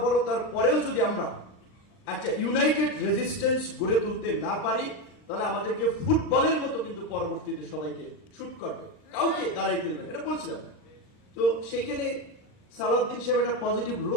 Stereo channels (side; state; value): right; late; 39 ms